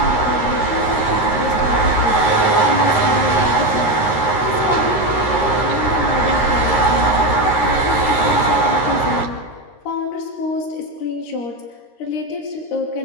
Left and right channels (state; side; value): late; right; 13 ms